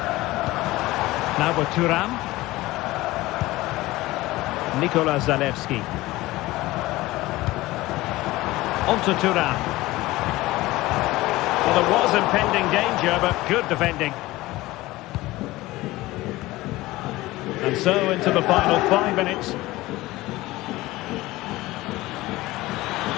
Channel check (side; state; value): right; quieter; 18.7 dB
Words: Now with Thuram. Nikola Zalewski. On to Thuram. Well, there was impending danger, but good defending. And so into the final 5 minutes.